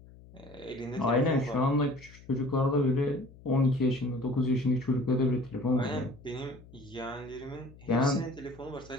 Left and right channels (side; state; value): left; noise; hum, 21 dB below the sound